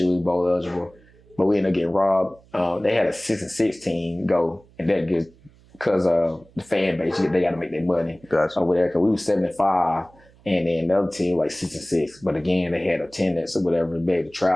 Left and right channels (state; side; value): noise; right; hum, 28 dB below the sound